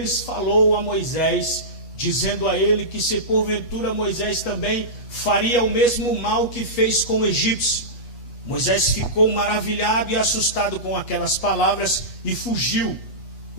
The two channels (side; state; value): right; late; 8.2 ms